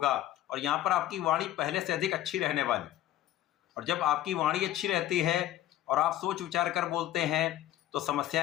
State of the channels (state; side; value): quieter; right; 13.3 dB